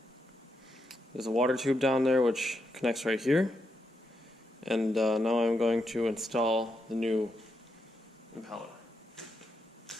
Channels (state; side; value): normal; both; correlation 0.82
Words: there's a water tube down there which connects right here. And now I'm going to install the new impeller.